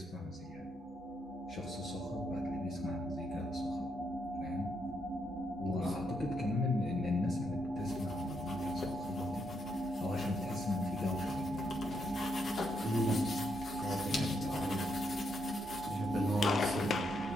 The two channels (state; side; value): normal; both; correlation 0.78